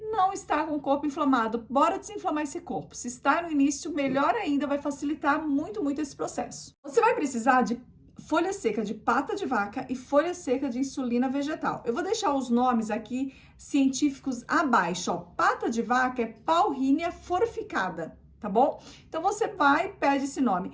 não está com o corpo inflamado. Bora desinflamar esse corpo. Se está no início, melhor ainda, vai facilitar muito esse processo. Você vai precisar de folha seca de pata de vaca e folha seca de insulina vegetal. Eu vou deixar os nomes aqui científicos abaixo, ó. Pata de vaca é Paullinia forficada, tá bom? Então, você vai e pede esse nome.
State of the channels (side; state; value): both; identical; correlation 1.00